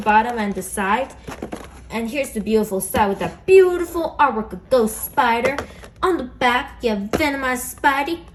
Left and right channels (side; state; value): both; identical; correlation 1.00